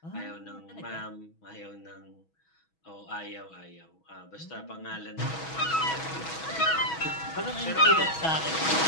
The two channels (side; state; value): right; late; 6.2 ms